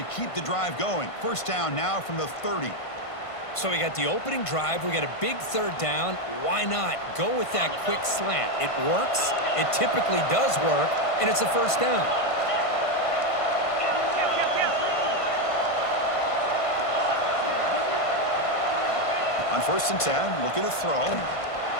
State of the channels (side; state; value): right; late; 1.5 ms